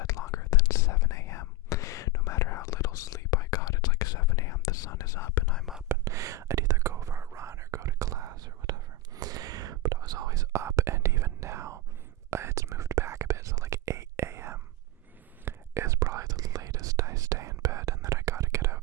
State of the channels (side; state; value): both; normal; correlation 0.09